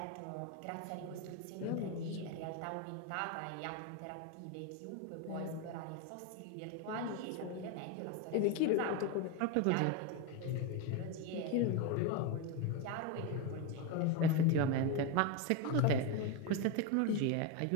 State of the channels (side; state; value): both; different; correlation 0.02